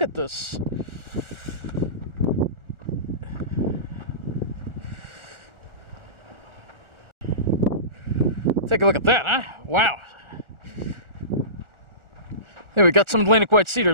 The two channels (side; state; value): left; late; 1.4 ms